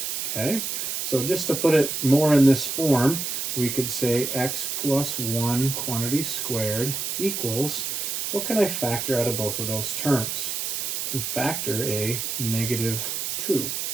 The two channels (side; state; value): right; noise; hiss, 2 dB below the sound